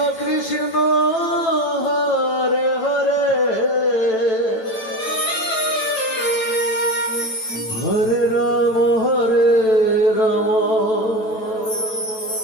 Krishna Hare Hare Hare Ram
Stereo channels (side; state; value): right; late; 9.1 ms